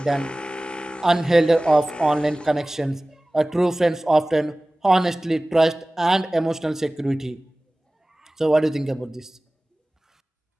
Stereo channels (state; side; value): normal; both; correlation 0.98